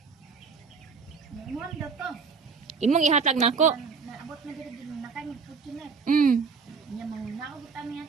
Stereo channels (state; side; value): quieter; left; 5.2 dB